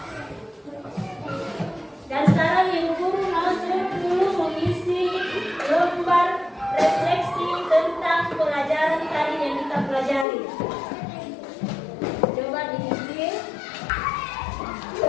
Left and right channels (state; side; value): drops out; right; at 10.2 s